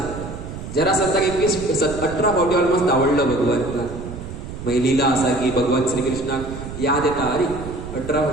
जरासंधाक 18 फावटी ऑलमोस्ट धांवडलो भगवंतान. मागीर लिला आसा की भगवान श्रीकृष्णाक याद येता. अरे 18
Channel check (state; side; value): noise; right; rumble, 10 dB below the sound